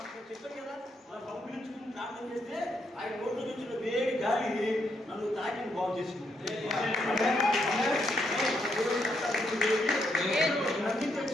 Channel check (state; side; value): normal; both; correlation 0.77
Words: చెప్పారు కదా, మనం పంపించుకుని ప్రార్థన చేస్తే ఆయన నోట్లో నుంచి వేడి గాలి నన్ను తాకిని బాగు చేసుకుంది.